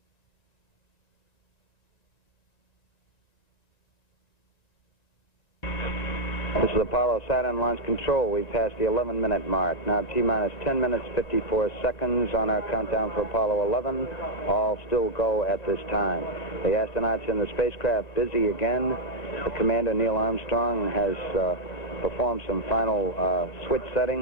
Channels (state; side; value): late; right; 1.9 ms